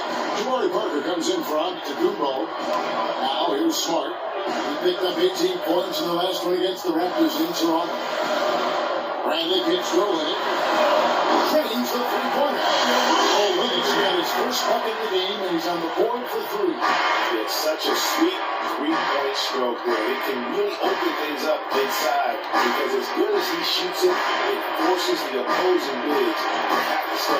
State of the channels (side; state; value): both; identical; correlation 1.00